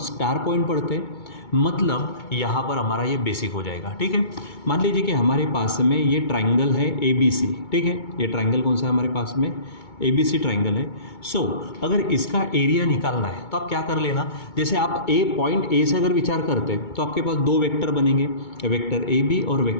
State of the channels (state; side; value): late; right; 2.2 ms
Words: पॉइंट पढ़ते हैं, मतलब यहाँ पर हमारा ये बेसिक हो जाएगा। ठीक है, मान लीजिए कि हमारे पास में ये ट्राइंगल है ABC। ठीक है, ये ट्राइंगल कौन सा है हमारे पास में, ABC ट्राइंगल है। सो अगर इसका एरिया निकालना है तो आप क्या कर लेना, जैसे आप पॉइंट A से अगर विचार करते हैं तो आपके पास दो वेक्टर बनेंगे, वेक्टर AB और